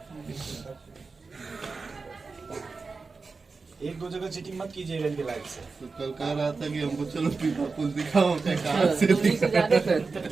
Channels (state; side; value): quieter; left; 4.3 dB